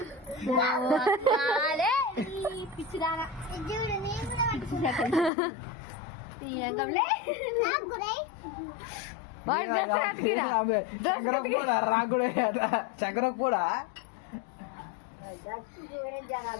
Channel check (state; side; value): drops out; right; at 5.3 s